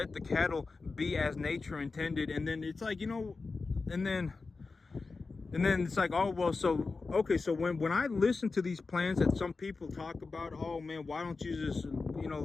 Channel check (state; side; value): quieter; right; 4.1 dB